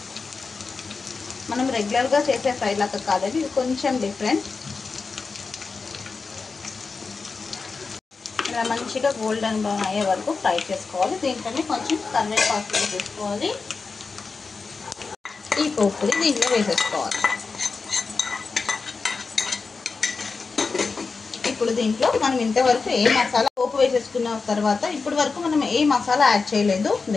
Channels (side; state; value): right; quieter; 4.5 dB